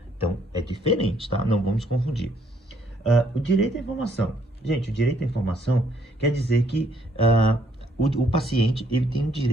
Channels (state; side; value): normal; both; correlation 0.67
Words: Então, é diferente, tá? Não vamos confundir. O direito à informação. Gente, o direito à informação quer dizer que o paciente, ele tem o